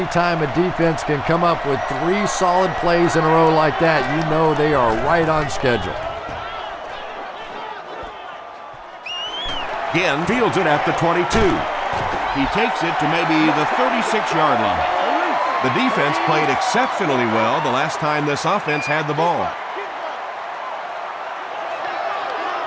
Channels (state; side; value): identical; both; correlation 1.00